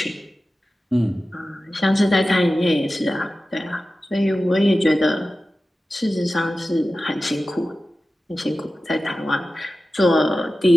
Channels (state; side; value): normal; both; correlation 0.94